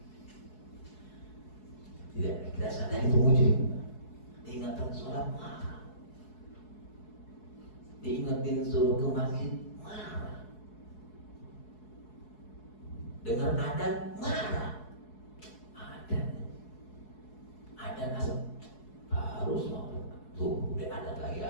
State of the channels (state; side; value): late; right; 4.7 ms